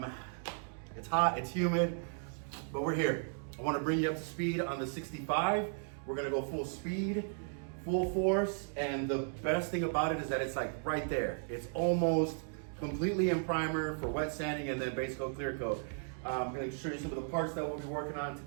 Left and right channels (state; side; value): silent; left; digital silence